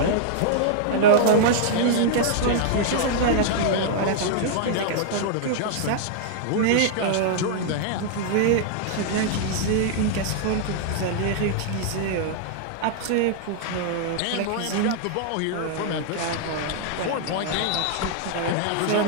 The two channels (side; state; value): both; different; correlation -0.01